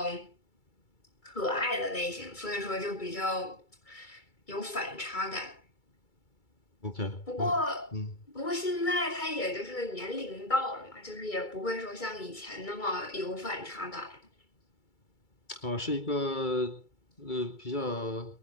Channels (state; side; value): late; right; 2.3 ms